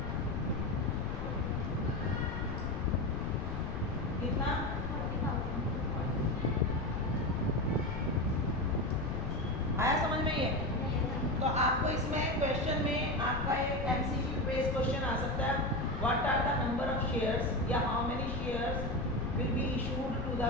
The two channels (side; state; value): left; noise; rumble, 4 dB below the sound